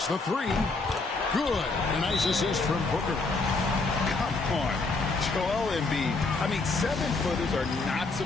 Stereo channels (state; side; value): quieter; right; 3.7 dB